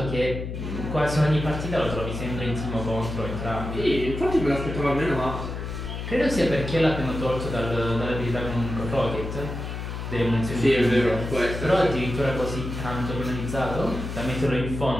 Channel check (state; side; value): noise; left; hum, 6 dB below the sound